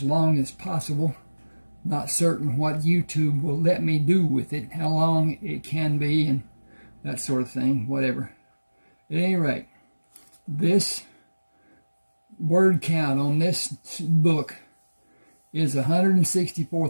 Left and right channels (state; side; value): inverted; both; correlation -1.00